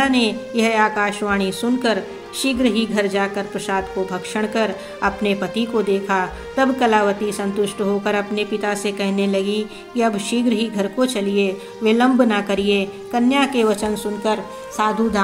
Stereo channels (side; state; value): both; identical; correlation 1.00